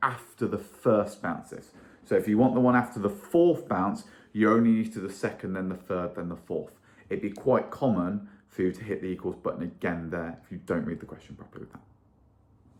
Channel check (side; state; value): both; identical; correlation 1.00